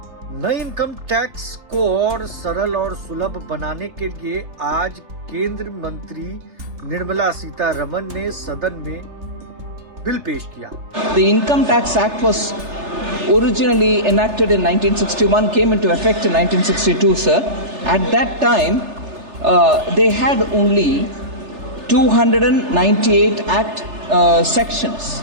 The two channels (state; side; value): late; left; 3.3 ms